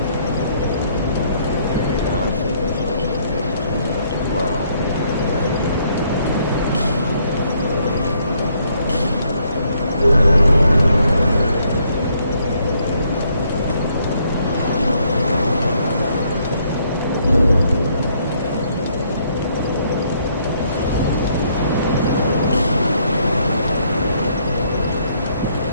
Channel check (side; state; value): both; inverted; correlation -0.69